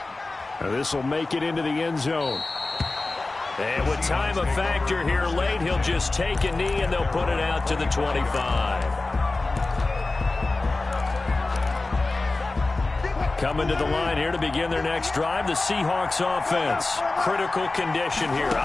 Now this will make it into the end zone. And with time a factor here late, he'll just take a knee and they'll put it out to the 25. Coming to the line here to begin their next drive, the Seahawks offense. Critical condition here,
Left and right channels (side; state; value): right; quieter; 3.3 dB